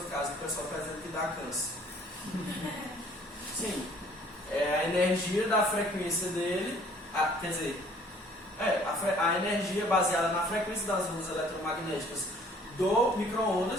casa, o pessoal está dizendo que dá câncer. Sim. É a energia da frequência dele, a energia baseada na frequência das ondas eletromagnéticas do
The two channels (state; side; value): normal; both; correlation 0.56